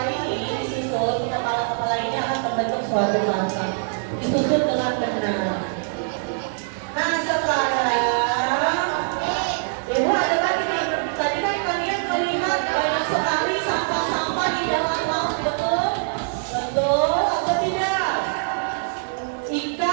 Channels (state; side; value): silent; left; 58 dB below the other